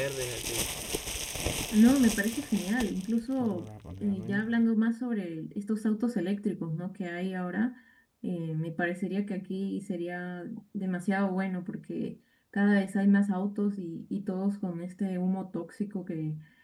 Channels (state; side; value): identical; both; correlation 1.00